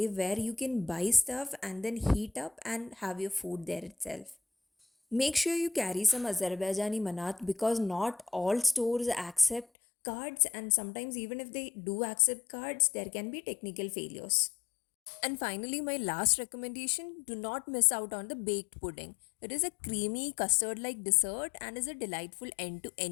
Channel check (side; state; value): right; drops out; at 9.7 s